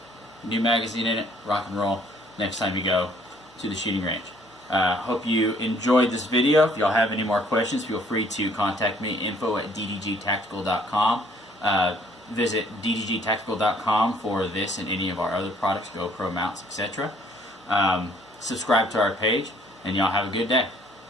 new magazine in it, rock and roll next time you go to the shooting range. Hope you enjoyed this video. If y'all have any more questions, feel free to contact me, info@ddgtactical.com. Visit ddgtactical.com for this and any of our other products, GoPro mounts, etc. Subscribe to our page, and y'all have a good day.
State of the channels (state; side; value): normal; both; correlation 0.61